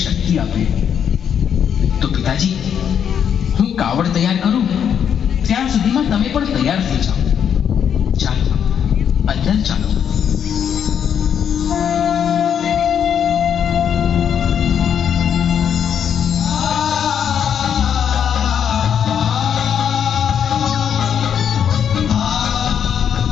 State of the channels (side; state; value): right; quieter; 8.3 dB